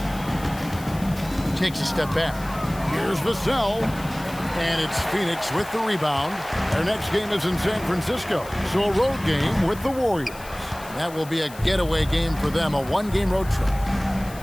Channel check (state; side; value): noise; left; hiss, 18 dB below the sound